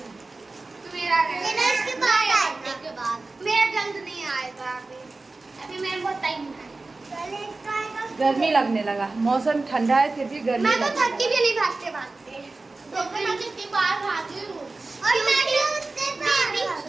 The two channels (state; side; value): quieter; left; 3.4 dB